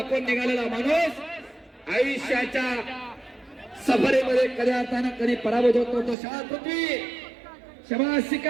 निघालेला माणूस आयुष्याच्या सफरेमध्ये कधी अर्थानं कधी पराभूत होतो. तो शाबास पृथ्वी, शाबास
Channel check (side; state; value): left; drops out; at 6.2 s